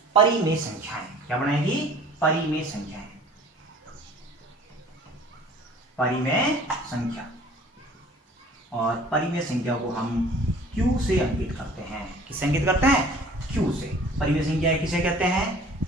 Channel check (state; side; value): normal; both; correlation 0.49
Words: परिमेय संख्याएं। क्या बनाएगी? परिमेय संख्याएं। परिमेय संख्या। और परिमेय संख्या को हम Q से अंकित करते हैं। किससे अंकित करते हैं? Q से। परिमेय संख्याएं किसे कहते हैं?